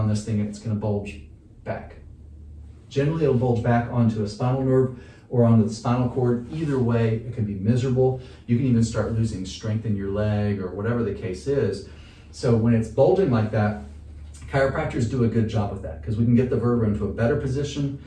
this thing, it's gonna bulge back. Generally, it'll bulge back onto a spinal nerve or onto the spinal cord. Either way, it can be miserable. You can even start losing strength in your leg or whatever the case is. So when it's bulging like that, chiropractors do a good job of that because we can get the vertebra into a better position,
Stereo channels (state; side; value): identical; both; correlation 1.00